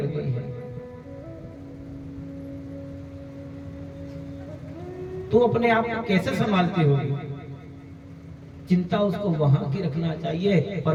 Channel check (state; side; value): identical; both; correlation 1.00